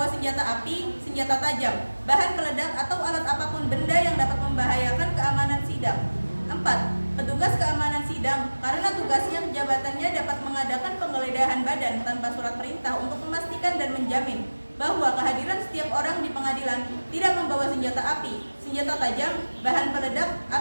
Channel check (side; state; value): both; inverted; correlation -1.00